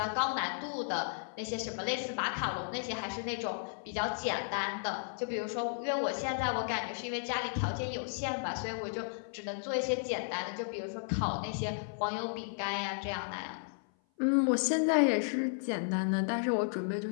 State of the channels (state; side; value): silent; right; 55 dB below the other